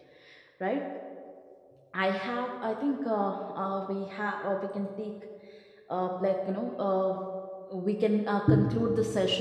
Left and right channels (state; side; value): identical; both; correlation 1.00